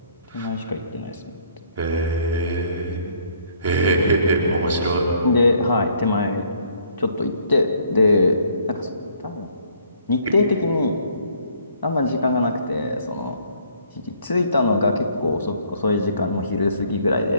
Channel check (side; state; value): both; inverted; correlation -0.63